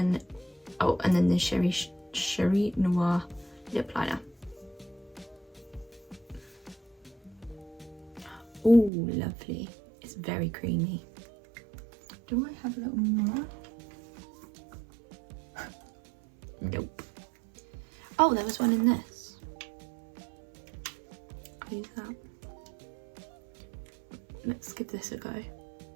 the Cherie Noir lip liner. Oh, lovely. It's very creamy. Do I have a little more? Nope. Oh, there was one in this. I'll use that. Let's give this a go.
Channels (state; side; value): drops out; left; at 8.9 s